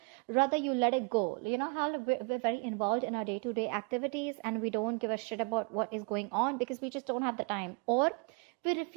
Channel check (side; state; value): left; quieter; 34.8 dB